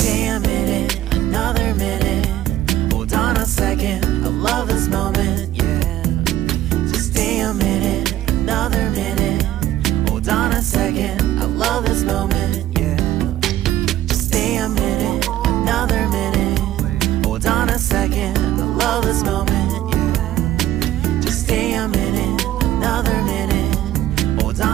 a minute, another minute. Hold on a second, I love this moment, yeah. Just stay a minute, another minute. Hold on a second, I love this moment, yeah. Just stay a minute, another minute. Hold on a second, I love this moment, yeah. Just stay a minute, another minute. Hold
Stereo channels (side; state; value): left; quieter; 13.4 dB